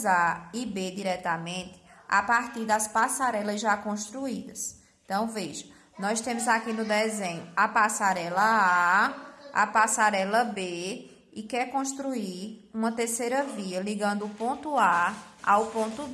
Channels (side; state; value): both; identical; correlation 1.00